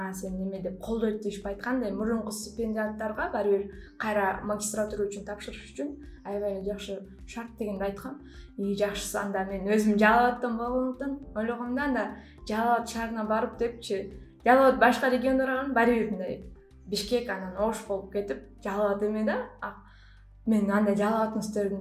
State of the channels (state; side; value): identical; both; correlation 1.00